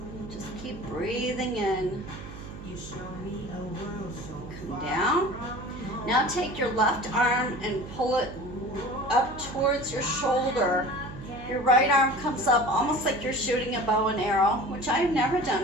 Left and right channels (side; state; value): right; noise; hum, 13 dB below the sound